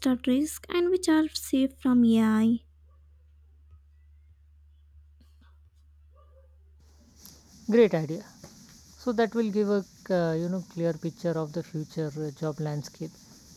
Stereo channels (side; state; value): both; identical; correlation 1.00